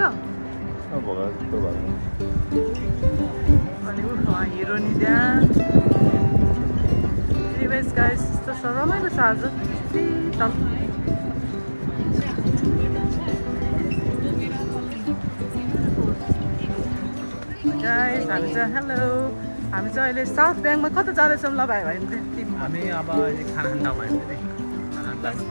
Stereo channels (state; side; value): inverted; both; correlation -1.00